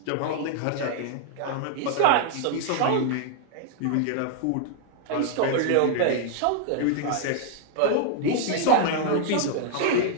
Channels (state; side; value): different; both; correlation 0.00